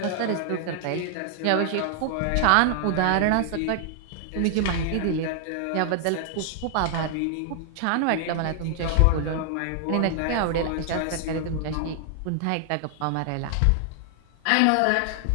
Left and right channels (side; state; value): both; different; correlation 0.00